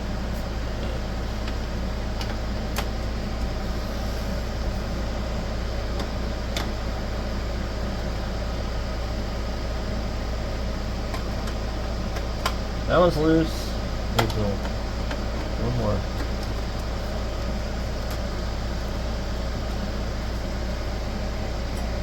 That one's loose. There's one more.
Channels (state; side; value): identical; both; correlation 1.00